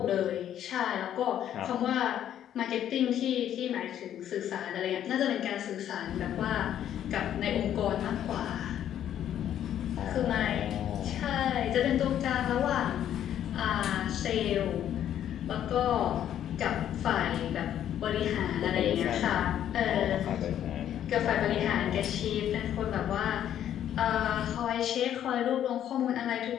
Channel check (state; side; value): quieter; right; 10.6 dB